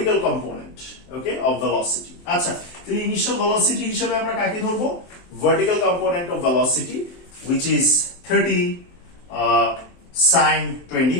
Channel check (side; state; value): right; late; 23 ms